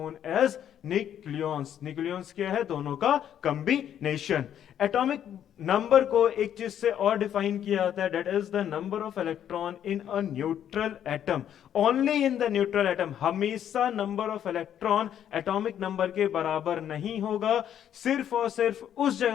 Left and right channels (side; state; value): right; quieter; 10.0 dB